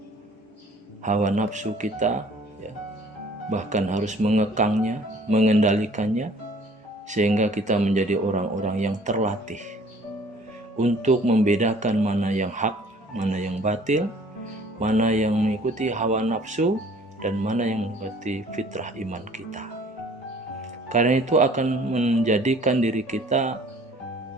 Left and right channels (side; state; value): both; normal; correlation 0.53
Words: hawa nafsu kita, bahkan harus mengekangnya, mengendalikannya, sehingga kita menjadi orang-orang yang terlatih untuk membedakan mana yang hak, mana yang batil, mana yang mengikuti hawa nafsu, dan mana yang mengikuti fitrah iman kita. Karena itu akan menjadikan diri kita